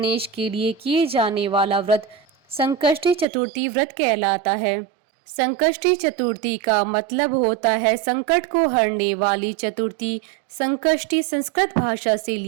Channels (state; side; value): drops out; left; at 3.2 s